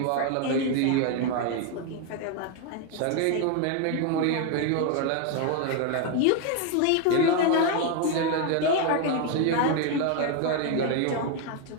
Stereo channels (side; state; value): both; different; correlation 0.01